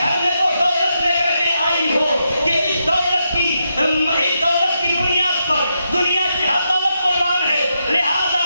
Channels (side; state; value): both; inverted; correlation -0.83